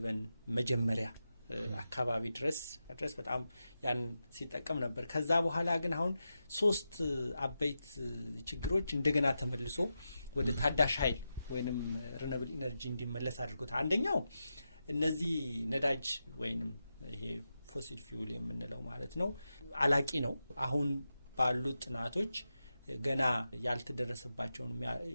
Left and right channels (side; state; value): both; inverted; correlation -0.90